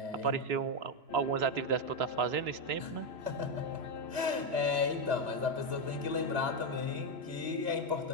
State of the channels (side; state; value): left; late; 3.0 ms